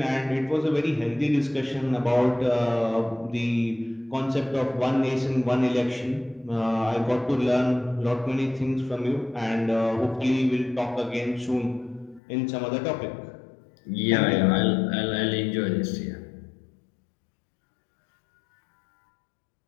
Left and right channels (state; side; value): drops out; right; at 12.2 s